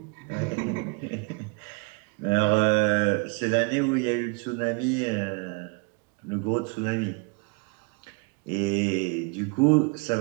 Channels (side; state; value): left; quieter; 31.6 dB